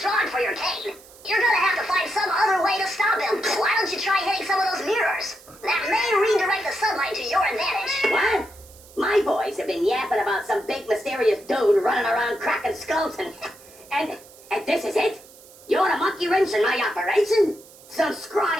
for your cane. You're gonna have to find some other way to stop him. Why don't you try hitting some of those mirrors? That may redirect the sunlight to your advantage. What? My boys have been yapping about some big mysterious dude running around cracking skulls and this is it? You want a monkey wrench in my operation? Some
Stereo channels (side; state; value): right; noise; hiss, 23 dB below the sound